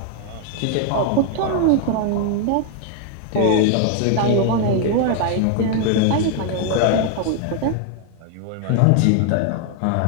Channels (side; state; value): both; different; correlation 0.00